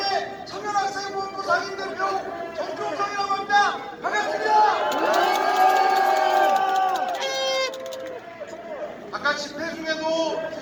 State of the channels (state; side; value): identical; both; correlation 1.00